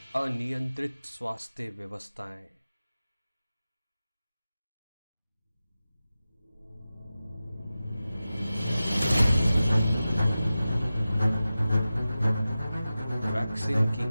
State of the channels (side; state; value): both; inverted; correlation -0.95